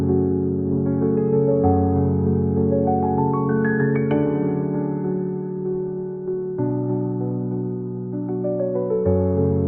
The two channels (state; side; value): identical; both; correlation 1.00